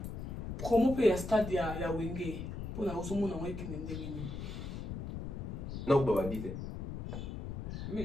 promo pe ya stade ya Wenge pour na osomo na wiki ndenge. Non, pas bandité.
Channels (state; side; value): noise; left; rumble, 6 dB below the sound